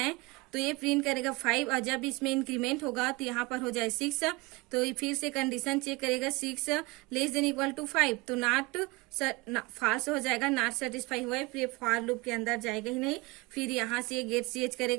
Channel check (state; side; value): quieter; left; 24.5 dB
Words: तो ये प्रिंट करेगा 5, और जब इसमें इंक्रीमेंट होगा तो यहाँ पर हो जाए 6। तो ये फिर से कंडीशन चेक करेगा 6 लेस देन इक्वल टू 5, तो नॉट फॉल्स हो जाएगा, नॉट सेटिस्फाई हुआ है, फिर फॉर लूप के अंदर जाएगा ही नहीं। फिर यहाँ से ये गेट सीएच